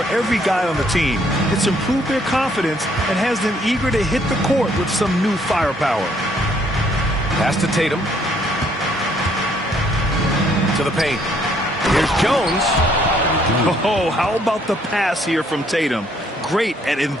every guy on the team. It's improved their confidence and has them eager to hit the court with some new firepower. Pass to Tatum. To the paint. Here's Jones. Oh, how about the pass here from Tatum? Great at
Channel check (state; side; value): normal; both; correlation 0.66